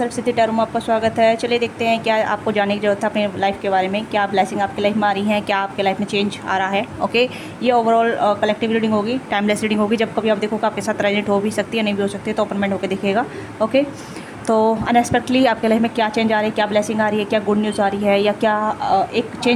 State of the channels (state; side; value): identical; both; correlation 1.00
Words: tarot में आपका स्वागत है। चलिए देखते हैं क्या आपको जानने की जरूरत है अपने लाइफ के बारे में, क्या ब्लेसिंग आपकी लाइफ में आ रही है, क्या आपके लाइफ में चेंज आ रहा है। ओके, ये ओवरऑल कलेक्टिव रीडिंग होगी, टाइमलेस रीडिंग होगी। जब कभी आप देखोगे आपके साथ रेजोनेट हो भी सकती है, नहीं भी हो सकती है, तो ओपन माइंड होकर देखिएगा। ओके, तो अनएक्सपेक्टली आपके लाइफ में क्या चेंज आ रही है, क्या ब्लेसिंग आ रही है, क्या गुड न्यूज़ आ रही है, या क्या एक